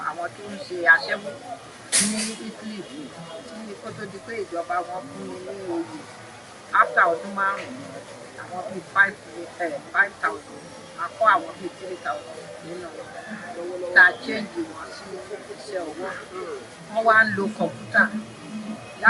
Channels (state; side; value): identical; both; correlation 1.00